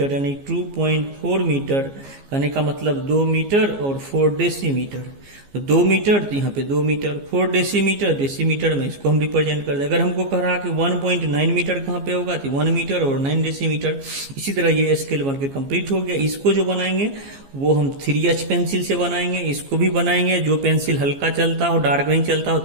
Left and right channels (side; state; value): left; late; 15 ms